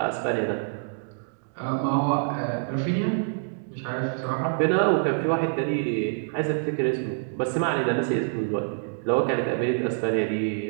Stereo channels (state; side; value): silent; left; digital silence